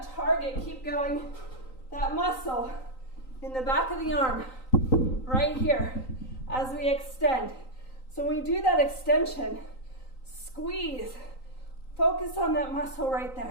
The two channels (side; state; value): right; late; 3.9 ms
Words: to target, keep going, that muscle in the back of the arm, right here, as we extend. So when we do that extension, squeeze, focus on that muscle right